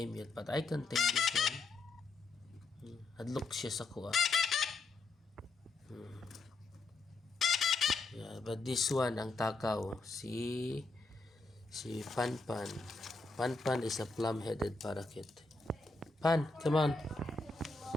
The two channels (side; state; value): right; quieter; 3.7 dB